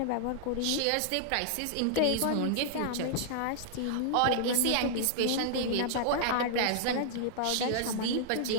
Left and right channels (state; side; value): different; both; correlation -0.01